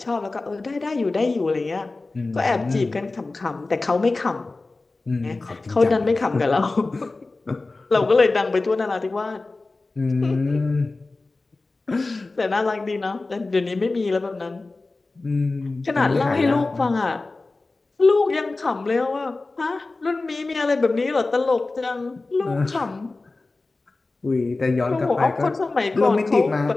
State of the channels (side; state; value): right; quieter; 3.4 dB